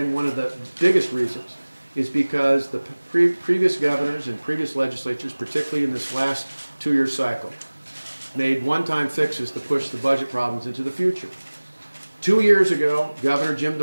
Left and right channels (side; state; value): both; inverted; correlation -1.00